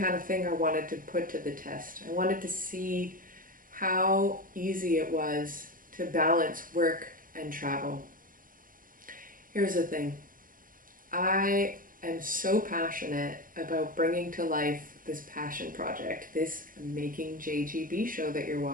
of thing I wanted to put to the test. I wanted to see how easy it was to balance work and travel. Here's the thing. I am so passionate about bringing to life this passion project, this Making JGB show that you're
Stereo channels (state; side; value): late; left; 0.40 ms